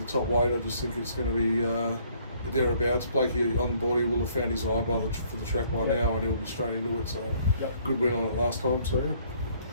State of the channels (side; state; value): both; inverted; correlation -0.62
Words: the top weight, I just think it's going to be thereabouts. Blakey on board, he will have found his eye for the track by now, and he'll be straight into it. So good win on it last time. So